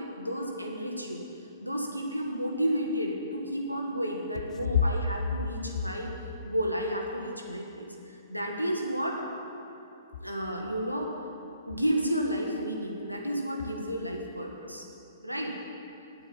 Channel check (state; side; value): inverted; both; correlation -0.69